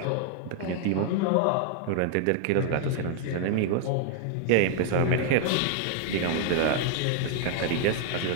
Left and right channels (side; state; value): both; different; correlation 0.00